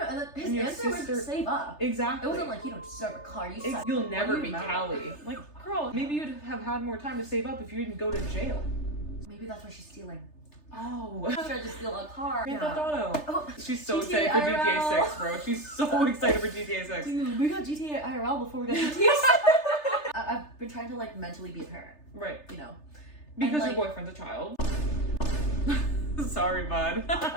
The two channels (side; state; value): right; late; 3.3 ms